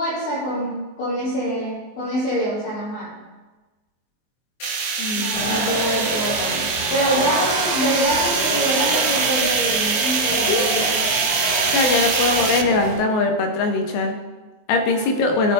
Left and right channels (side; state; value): right; late; 23 ms